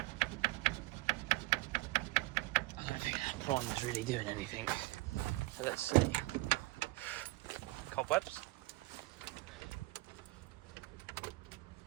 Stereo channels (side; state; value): left; quieter; 20.8 dB